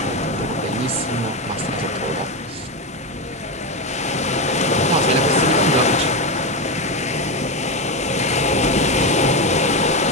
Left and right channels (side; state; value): both; normal; correlation 0.12